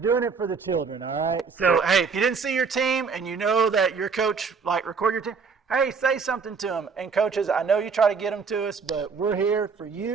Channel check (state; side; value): quieter; left; 5.3 dB